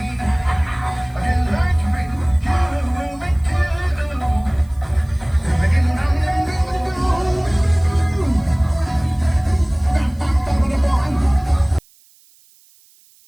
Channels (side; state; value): right; noise; hiss, 30 dB below the sound